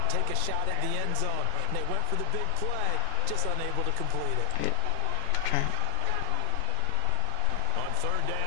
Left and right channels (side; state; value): both; different; correlation 0.00